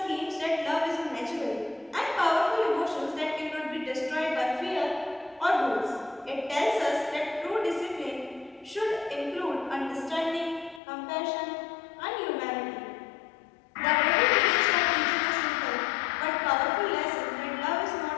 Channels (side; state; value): right; drops out; at 10.8 s